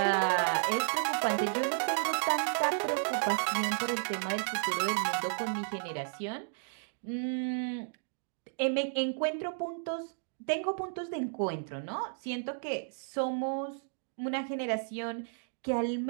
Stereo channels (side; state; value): left; silent; digital silence